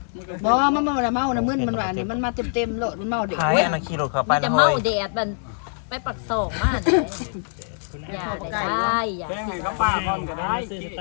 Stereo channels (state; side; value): silent; right; 63 dB below the other